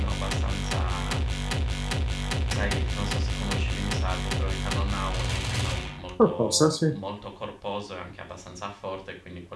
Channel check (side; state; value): both; identical; correlation 1.00